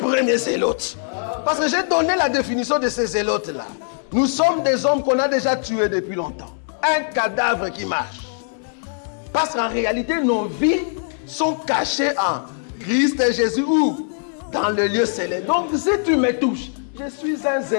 zélote. Parce que j'ai donné la définition de ces zélotes-là. Nous sommes des hommes qu'on a déjà tués depuis longtemps. Un cadavre qui marche. Parce qu'en réalité, nos vies sont cachées en Christ et Jésus ou dans le lieu céleste. Donc, si tu me touches, je suis un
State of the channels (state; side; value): silent; right; digital silence